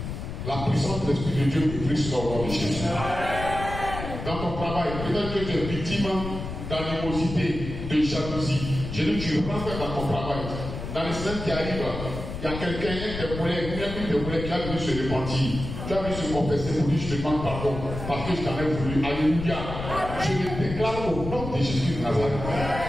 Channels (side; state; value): left; noise; rumble, 7 dB below the sound